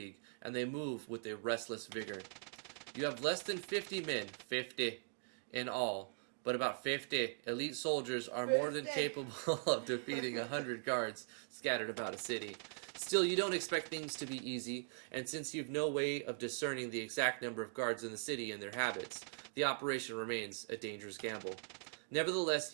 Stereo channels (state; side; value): silent; left; digital silence